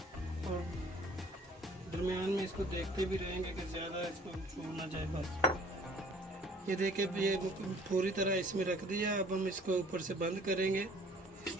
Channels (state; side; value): normal; both; correlation 0.54